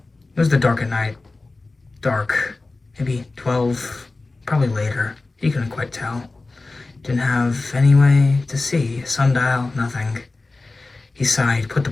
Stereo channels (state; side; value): quieter; right; 3.4 dB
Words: It was the dark at night. Dark. Maybe 12, probably later. He couldn't quite tell. Didn't have any way to see. Sundial, nothing. He sighed, put the